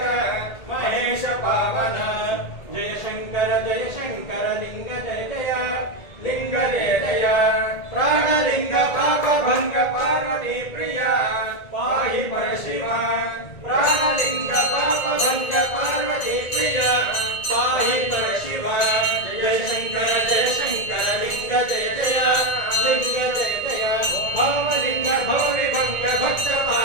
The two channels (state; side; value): late; right; 1.8 ms